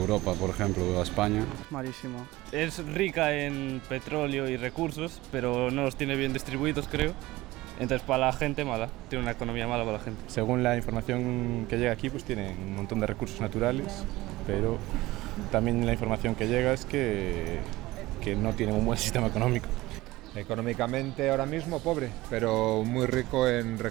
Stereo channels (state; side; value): quieter; left; 18.6 dB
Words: por ejemplo, a España. Malísimo. Es rica en petróleo y recursos, pero no los tiene bien distribuidos, creo. Entonces, para la gente, mala. Tiene una economía mala para la gente. Según la información que llega aquí, pues tienen un montón de recursos naturales, pero también la información que llega es que no tienen un buen sistema económico. Económicamente ahora mismo pobre, pero muy rico en